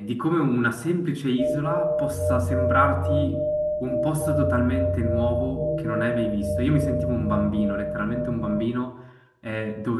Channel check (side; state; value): both; identical; correlation 1.00